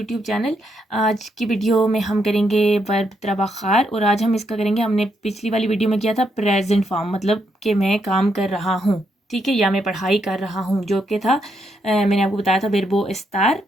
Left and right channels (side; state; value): both; normal; correlation 0.78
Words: channel. आज की वीडियो में हम करेंगे वर्ब त्राबाखार और आज हम इसका करेंगे। हमने पिछली वाली वीडियो में किया था प्रेजेंट फॉर्म, मतलब कि मैं काम कर रहा हूँ, ठीक है, या मैं पढ़ाई कर रहा हूँ, जो कि था मैंने आपको बताया था वर्बो एस्तार